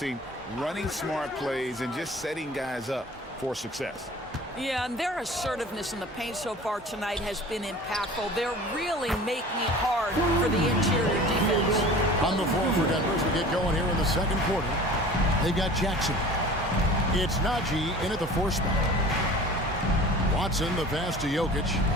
running smart plays, and just setting guys up for success. Yeah, and their assertiveness in the paint so far tonight has been impactful. They're really making it hard for the interior defense. On the floor for Denver as we get going here in the second quarter. They've got Jackson. It's Najee in at the 4 spot. Watson, the pass to Jokic.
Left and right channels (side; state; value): both; normal; correlation 0.42